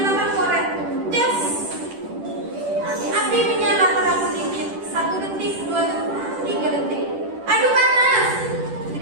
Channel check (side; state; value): left; late; 10 ms